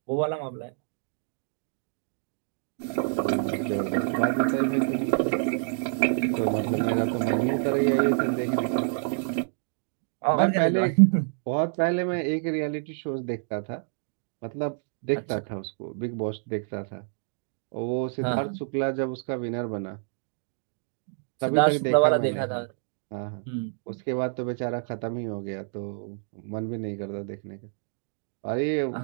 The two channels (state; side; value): silent; left; digital silence